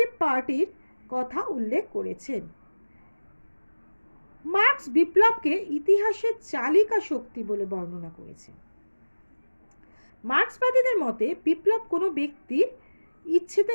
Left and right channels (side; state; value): both; inverted; correlation -1.00